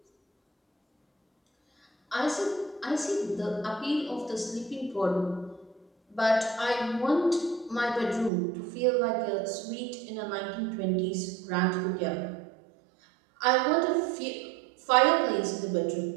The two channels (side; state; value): left; drops out; at 8.3 s